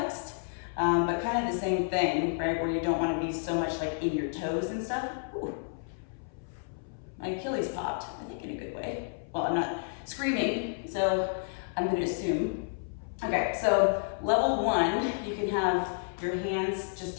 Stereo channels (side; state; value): right; silent; 57 dB below the other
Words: but kind of the same thing, right? Where you don't wanna be so much like in your toes and stuff. Ooh. My Achilles popped, I think in a good way. Well, I'm not screaming, so I'm gonna assume. Okay, so level one, you can have your hands just